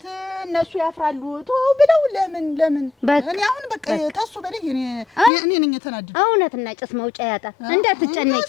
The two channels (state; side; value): drops out; right; at 5.3 s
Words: እነሱ ያፍራሉ ብለው ለምን እኔ አሁን በቃ ታሱ በለኝ እኔ ነኝ የተናደደ እውነትና ጭስ መውጫ ያጣ እንዳትጨነቂ